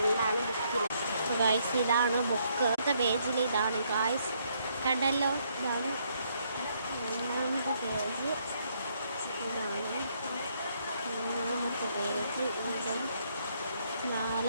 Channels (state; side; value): inverted; both; correlation -0.71